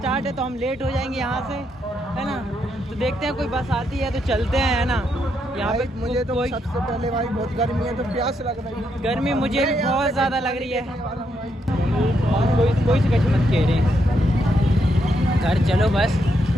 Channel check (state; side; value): normal; both; correlation 0.78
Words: है, तो हम लेट हो जाएंगे यहाँ से, है ना। तो देखते हैं कोई बस आती है तो चलते हैं, है ना। यहाँ पे मुझे तो सबसे पहले भाई बहुत गर्मी है, तो प्यास लग रही है, गर्मी मुझे भी बहुत ज़्यादा लग रही है। कोई से कच मत कह रहे हैं, घर चलो बस।